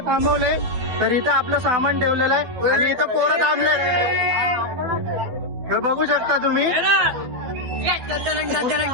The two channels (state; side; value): late; left; 12 ms